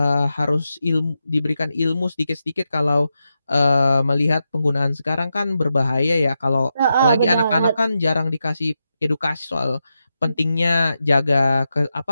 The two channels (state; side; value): inverted; both; correlation -0.88